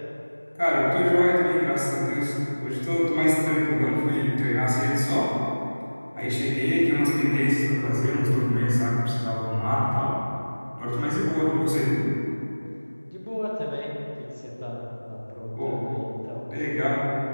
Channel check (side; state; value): both; inverted; correlation -1.00